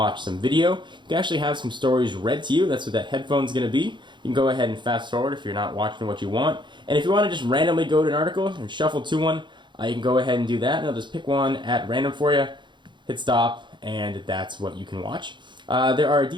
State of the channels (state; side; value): late; left; 0.23 ms